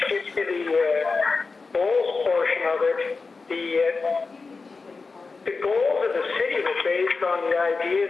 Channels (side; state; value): right; quieter; 4.3 dB